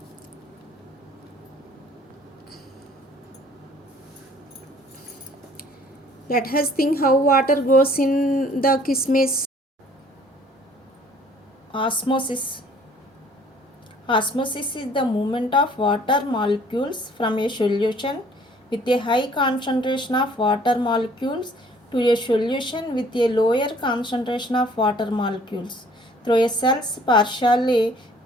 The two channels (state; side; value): normal; both; correlation 0.56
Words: Let us think how water goes in the kismis. Osmosis. Osmosis is the movement of water molecules from a solution with a high concentration of water molecules to a solution with a lower concentration of water molecules through a cell's partially